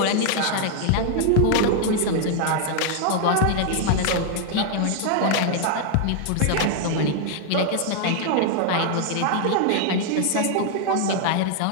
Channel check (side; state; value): both; different; correlation 0.00